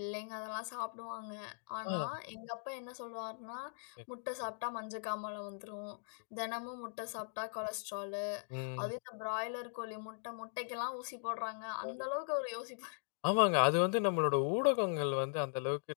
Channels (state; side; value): silent; right; digital silence